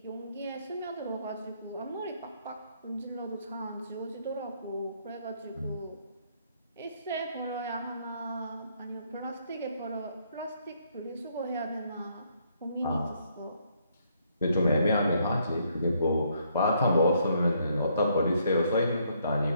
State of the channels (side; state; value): both; inverted; correlation -0.70